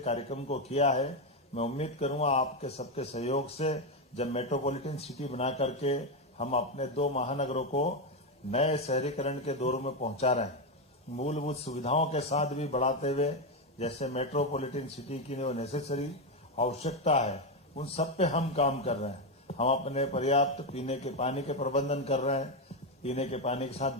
को किया है। मैं उम्मीद करूंगा आपके सबके सहयोग से जब मेट्रोपॉलिटन सिटी बना करके हम अपने 2 महानगरों को नए शहरीकरण के दौर में पहुंचा रहे हैं, मूलभूत सुविधाओं के साथ भी बढ़ाते हुए, जैसे मेट्रोपॉलिटन सिटी की जो नेसेसरी आवश्यकता है उन सब पे हम काम कर रहे हैं। हम अपने पर्याप्त पीने के पानी के प्रबंधन कर रहे हैं, पीने के पानी के साथ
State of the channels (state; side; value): normal; both; correlation 0.07